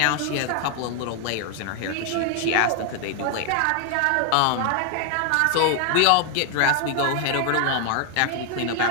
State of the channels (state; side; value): different; both; correlation 0.00